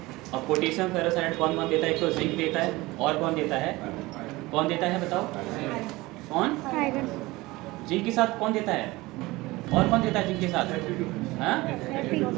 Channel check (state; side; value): quieter; left; 20.7 dB